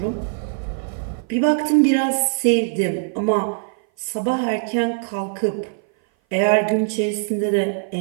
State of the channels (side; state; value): left; silent; 57 dB below the other